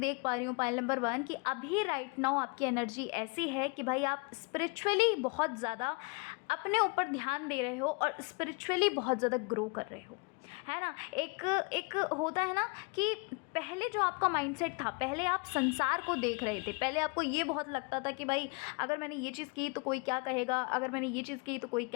पा रही हूँ पाइल नंबर 1 कि अभी राइट नाउ आपकी एनर्जी ऐसी है कि भाई आप स्पिरिचुअली बहुत ज़्यादा अपने ऊपर ध्यान दे रहे हो और स्पिरिचुअली बहुत ज़्यादा ग्रो कर रहे हो, है ना। एक होता है ना कि पहले जो आपका माइंडसेट था, पहले आप संसार को देख रहे थे, पहले आपको ये बहुत लगता था कि भाई अगर मैंने ये चीज़ की तो कोई क्या कहेगा, अगर मैंने ये चीज़ की तो कोई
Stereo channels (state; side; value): quieter; right; 31.4 dB